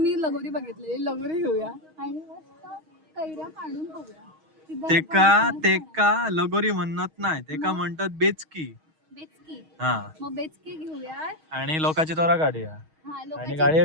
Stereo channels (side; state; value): left; late; 6.3 ms